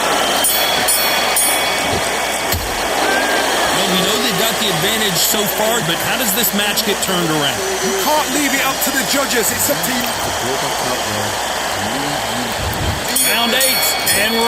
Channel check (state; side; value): noise; right; hum, 20 dB below the sound